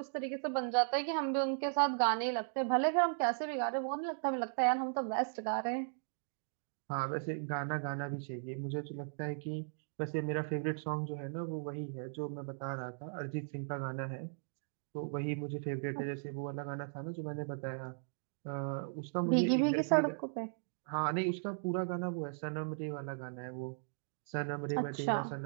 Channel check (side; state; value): left; silent; digital silence